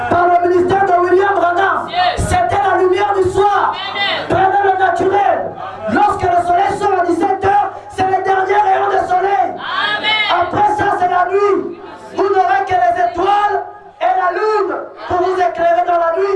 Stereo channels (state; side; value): identical; both; correlation 1.00